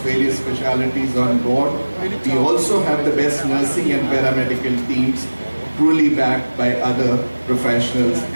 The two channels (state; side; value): inverted; both; correlation -1.00